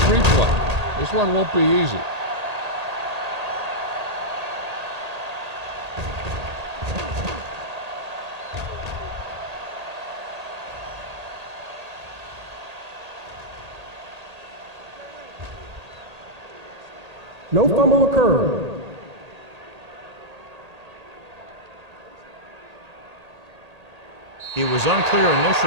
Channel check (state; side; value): late; left; 1.8 ms